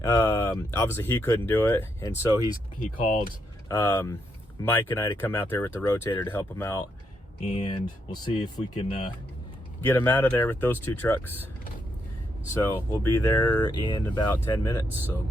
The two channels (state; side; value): normal; both; correlation 0.79